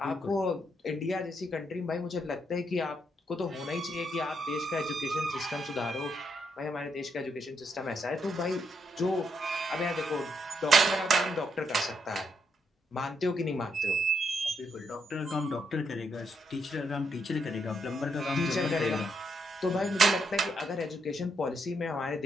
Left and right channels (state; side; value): normal; both; correlation 0.77